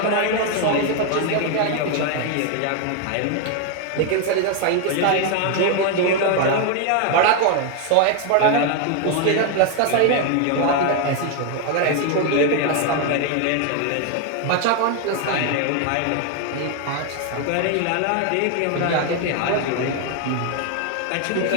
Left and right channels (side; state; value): both; different; correlation 0.01